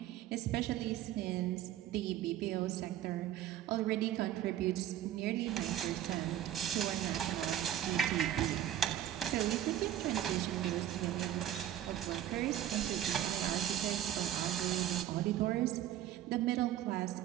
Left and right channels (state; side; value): quieter; left; 11.8 dB